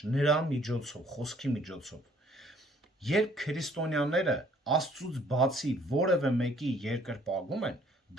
նրա միջոցով, խոսքի միջոցով։ Երբ քրիստոնյաները Աստծուց բացի որևէ մեկի երկրպագում են,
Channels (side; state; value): both; normal; correlation 0.60